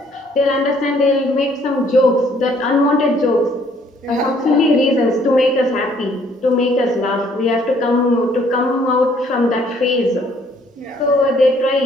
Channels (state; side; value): normal; both; correlation 0.63